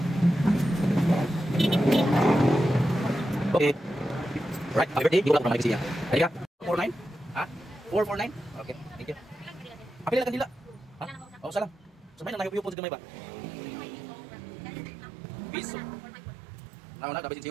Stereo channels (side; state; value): left; drops out; at 12.8 s